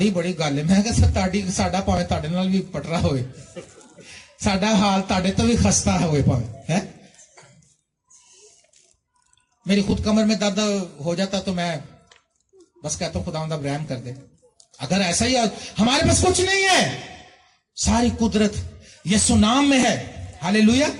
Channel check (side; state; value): both; identical; correlation 1.00